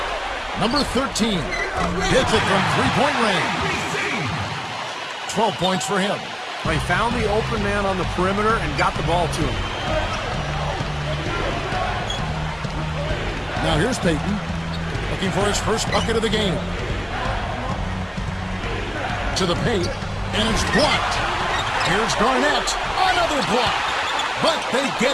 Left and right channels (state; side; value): identical; both; correlation 1.00